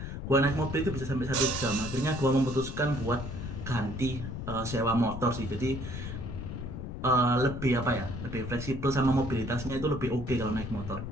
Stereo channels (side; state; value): left; noise; rumble, 7 dB below the sound